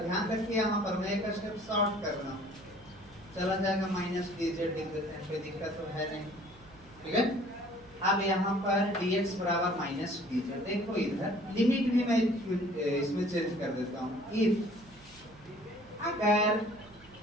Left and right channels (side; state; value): right; noise; hum, 24 dB below the sound